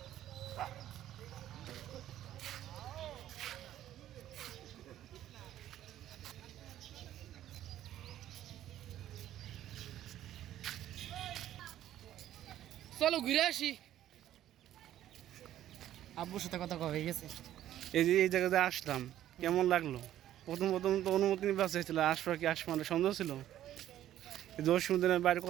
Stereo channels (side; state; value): left; quieter; 12.4 dB